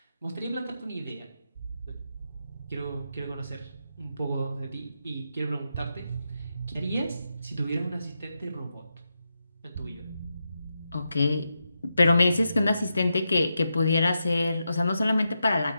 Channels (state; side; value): inverted; both; correlation -0.86